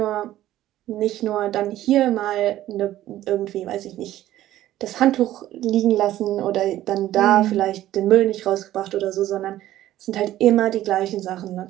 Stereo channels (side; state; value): left; quieter; 13.9 dB